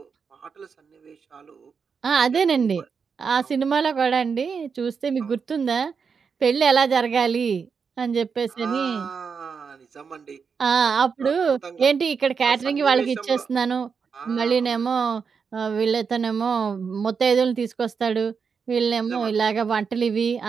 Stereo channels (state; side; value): quieter; left; 5.9 dB